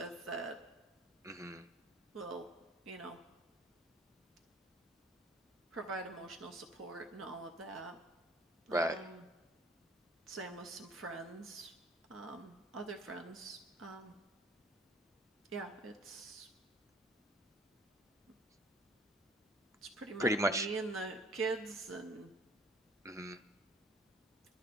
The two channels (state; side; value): normal; both; correlation 0.53